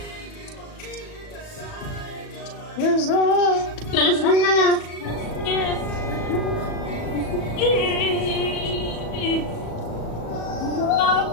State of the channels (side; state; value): right; late; 37 ms